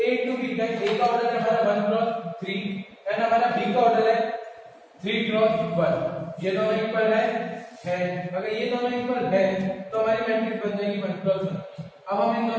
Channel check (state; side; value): identical; both; correlation 1.00